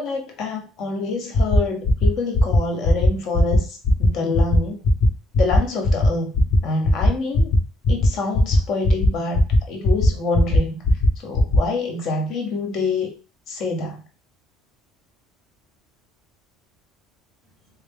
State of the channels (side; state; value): both; normal; correlation 0.75